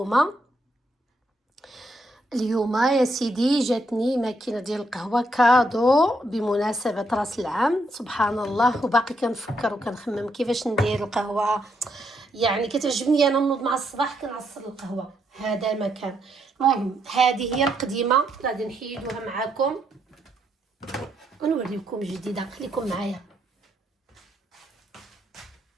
اليوم يا سيدي جاتني ماكينه ديال القهوه كادو بمناسبه راس العام. سبحان الله، وباقي كنفكر وكنخمم كيفاش ندير القهوه. يعني كتعجبني انا نوض مع الصباح كنعصر القهوه، هذا مكان. المهم هذه هي القديمه، غادي نحيدوها معاكم ونوريكم جديده. خليكم معايا.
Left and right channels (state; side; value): normal; both; correlation 0.77